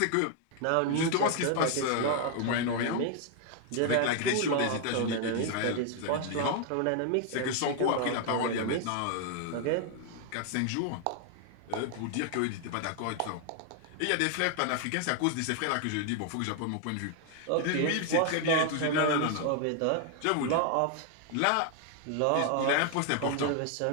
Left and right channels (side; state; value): both; different; correlation 0.00